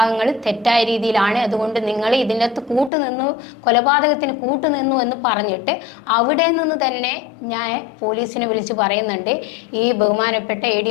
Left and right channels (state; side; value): drops out; right; at 2.9 s